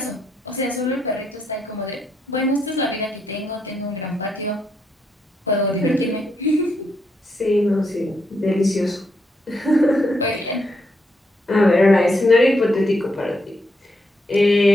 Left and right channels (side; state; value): both; normal; correlation 0.78